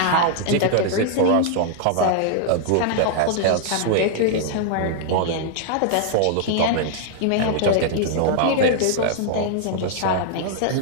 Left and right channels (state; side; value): different; both; correlation -0.01